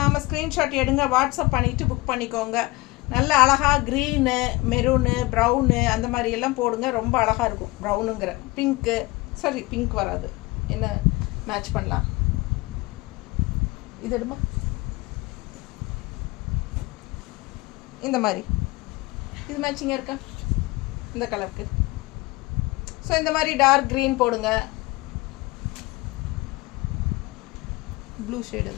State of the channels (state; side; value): quieter; right; 21.9 dB